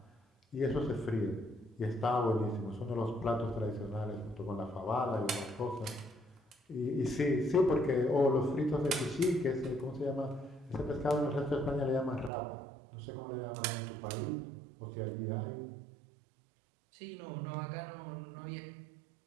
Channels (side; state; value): left; drops out; at 12.3 s